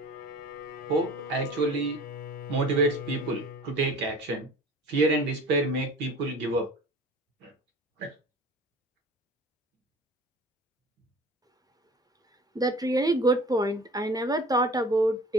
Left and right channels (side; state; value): both; normal; correlation 0.42